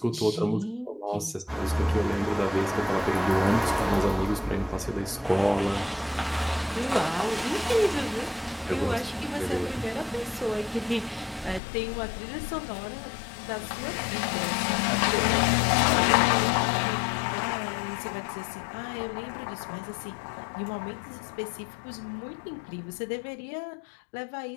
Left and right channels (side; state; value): right; drops out; at 11.6 s